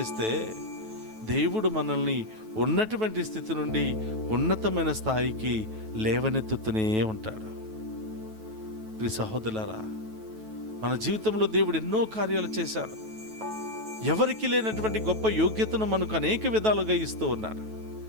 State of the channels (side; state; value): left; late; 9.2 ms